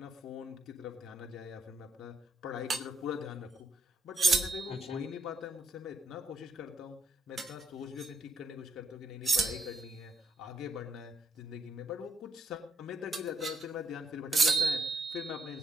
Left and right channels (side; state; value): both; normal; correlation 0.73